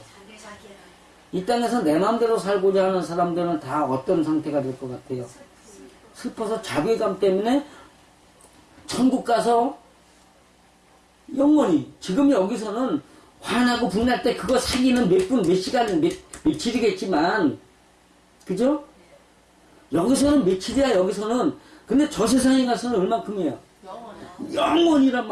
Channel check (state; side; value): identical; both; correlation 1.00